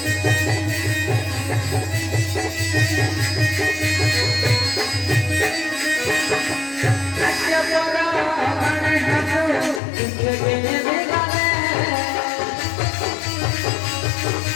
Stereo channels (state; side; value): drops out; right; at 9.8 s